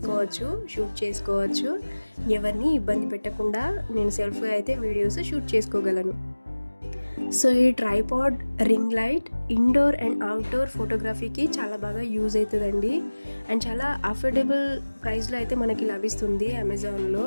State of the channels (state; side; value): inverted; both; correlation -1.00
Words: షూట్ చేసుకోవచ్చు. ఎవరిని ఇబ్బంది పెట్టకుండా నేను సెల్ఫ్గా అయితే వీడియోస్ షూట్ చేసుకోగలను. సో ఈ tripod ring light indoor and outdoor ఫోటోగ్రఫీకి చాలా బాగా యూజ్ అవుతుందండి. అండ్ చాలా అఫోర్డబుల్ ప్రైస్లో అయితే మనకి లభిస్తుంది అమెజాన్లో.